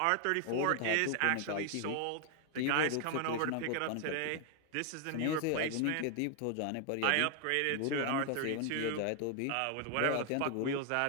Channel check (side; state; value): both; different; correlation 0.00